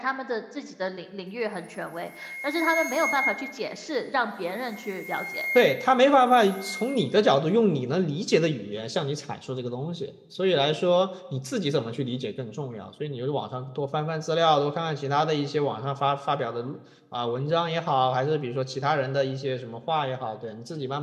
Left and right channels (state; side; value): identical; both; correlation 1.00